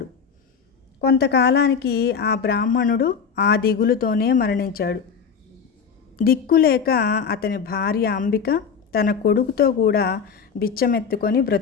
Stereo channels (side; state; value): right; quieter; 6.3 dB